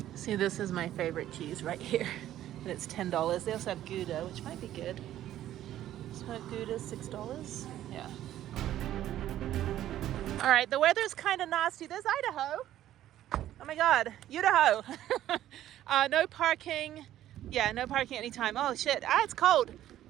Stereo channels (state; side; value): quieter; left; 12.6 dB